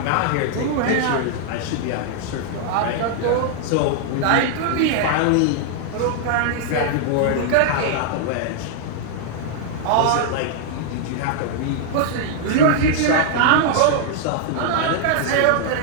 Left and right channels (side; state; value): both; different; correlation 0.00